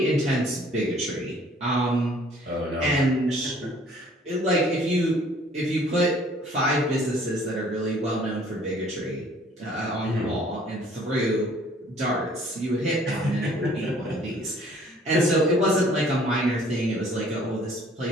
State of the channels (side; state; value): both; normal; correlation 0.56